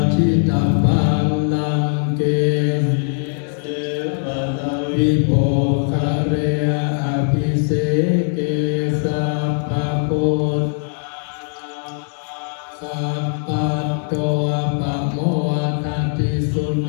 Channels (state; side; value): silent; right; 57 dB below the other